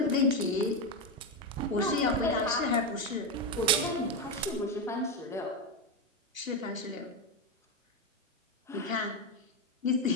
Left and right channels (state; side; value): normal; both; correlation 0.10